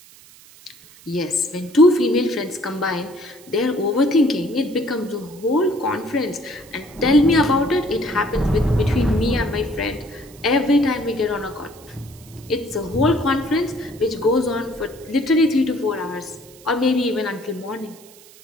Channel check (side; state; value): right; noise; hiss, 23 dB below the sound